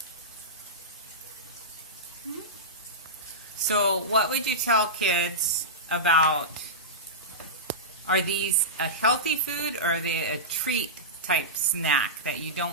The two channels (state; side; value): normal; both; correlation -0.15